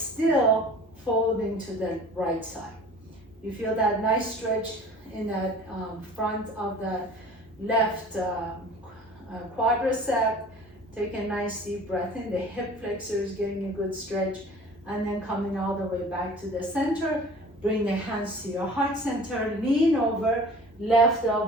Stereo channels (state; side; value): normal; both; correlation 0.45